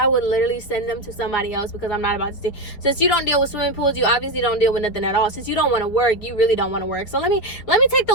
would literally send them to somebody else, because I'm not about to say, since you don't deal with swimming pools, you obviously don't deal with nothing at all. Since you don't want to work, you really don't want to work. So let me take the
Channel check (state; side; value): late; right; 4.6 ms